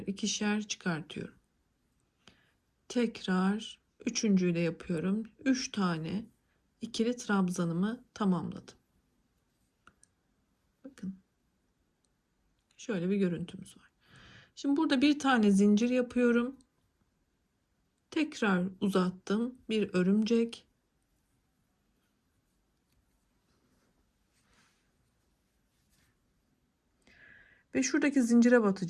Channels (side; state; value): both; identical; correlation 1.00